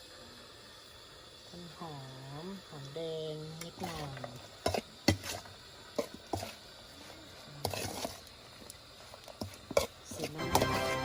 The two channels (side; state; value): both; identical; correlation 1.00